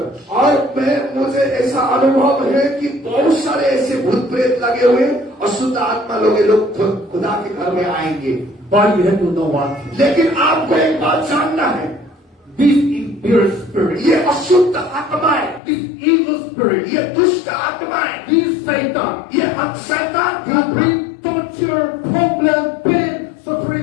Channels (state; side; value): drops out; right; at 15.6 s